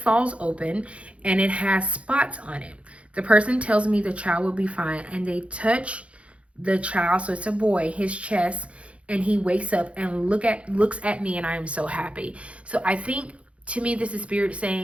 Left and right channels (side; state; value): left; late; 0.062 ms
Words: open and it has spots on it. The person tells me the child will be fine and they touch the child, so it's a boy, his chest, and he wakes up and looks at me, and I am so happy. So I think, to me, this is spirit